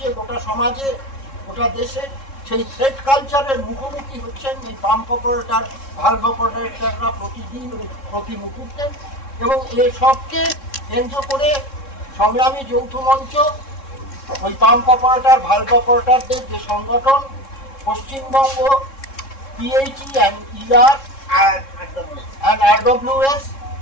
গোটা সমাজে গোটা দেশে, সেই থ্রেট কালচারের মুখোমুখি হচ্ছেন এই পাম্প অপারেটর ভালভ অপারেটররা প্রতিদিন প্রতি মুহূর্তে। এবং এসবকে কেন্দ্র করে সংগ্রামী যৌথ মঞ্চ, ওই পাম্প অপারেটর ভালভ অপারেটরদের যে সংগঠন Paschimbanga PHE and ER and RWS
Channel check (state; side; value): late; right; 3.7 ms